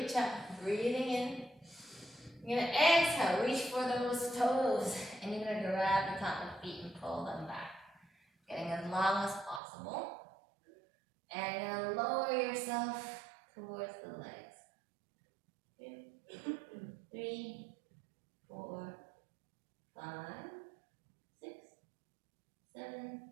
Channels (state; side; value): drops out; left; at 9.6 s